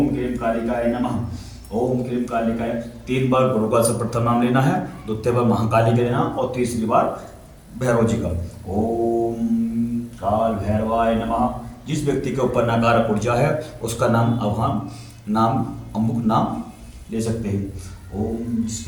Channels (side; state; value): both; identical; correlation 1.00